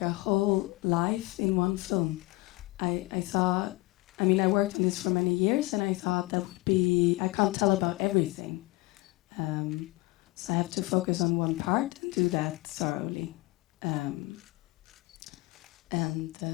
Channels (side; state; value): right; quieter; 22.3 dB